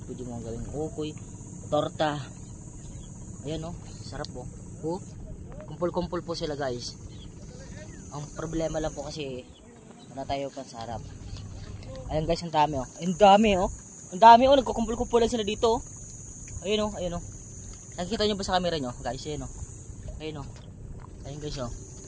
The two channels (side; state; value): both; identical; correlation 1.00